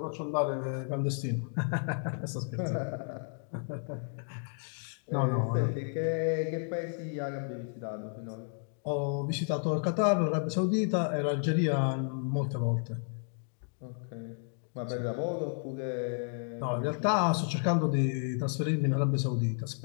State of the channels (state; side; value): silent; right; 56 dB below the other